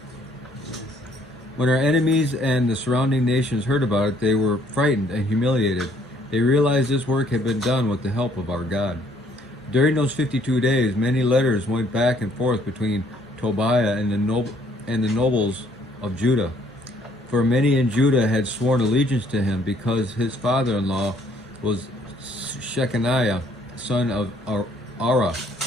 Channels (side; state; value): both; normal; correlation 0.64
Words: When our enemies and the surrounding nations heard about it, they were frightened and humiliated. They realized this work had been done with the help of our God. During those 52 days, many letters went back and forth between Tobiah and the nobles of Judah. For many in Judah had sworn allegiance to him because his father-in-law was Shechaniah, son of Ara,